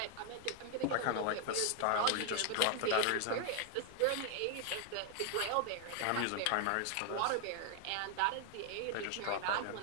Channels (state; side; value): different; both; correlation 0.00